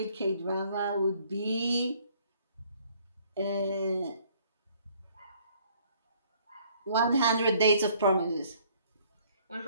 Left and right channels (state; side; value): inverted; both; correlation -0.61